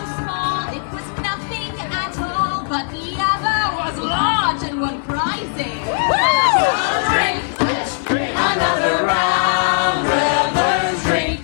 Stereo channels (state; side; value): silent; right; 57 dB below the other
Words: small it was nothing at all, but the other was large and won prizes. Drink Another round, revelers,